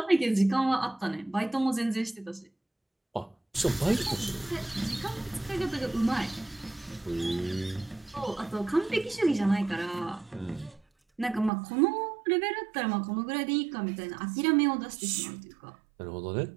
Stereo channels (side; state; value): left; drops out; at 11.5 s